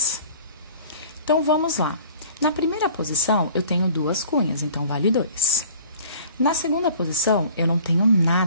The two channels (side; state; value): both; inverted; correlation -0.48